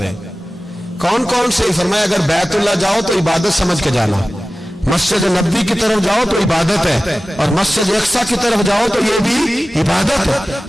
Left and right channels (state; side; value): normal; both; correlation 0.96